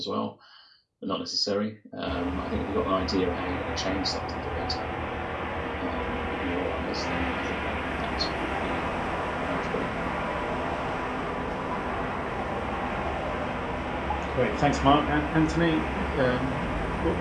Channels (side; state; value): both; identical; correlation 1.00